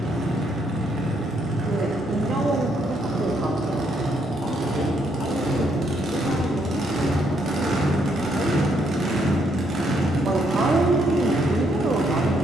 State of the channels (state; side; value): normal; both; correlation 0.73